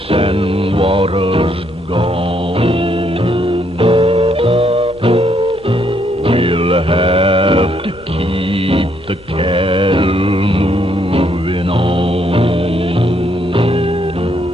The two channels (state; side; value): noise; left; rumble, 26 dB below the sound